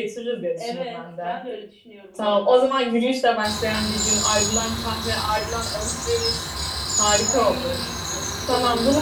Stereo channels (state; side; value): identical; both; correlation 1.00